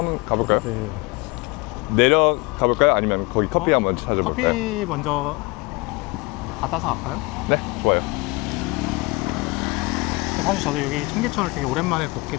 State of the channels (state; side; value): quieter; right; 25.1 dB